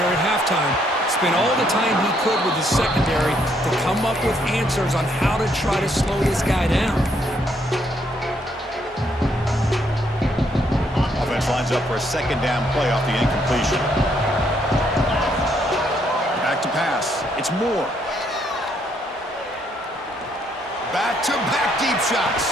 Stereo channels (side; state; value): both; normal; correlation 0.72